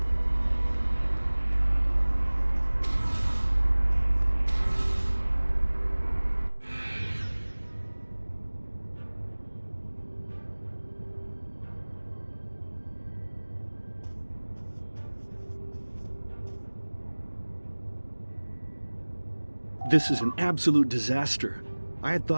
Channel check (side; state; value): both; inverted; correlation -1.00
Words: This is an absolute disaster. I had